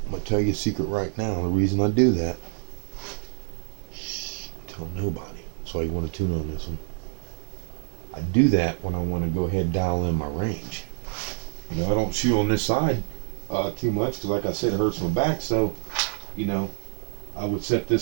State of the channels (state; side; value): silent; left; digital silence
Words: I'm going to tell you a secret right now, the reason I do that. Tell nobody. That's why you want to tune on this one. I do that when I want to go ahead and dial in my range. I don't shoot on this side too much because, like I said, it hurts my back. So, I would set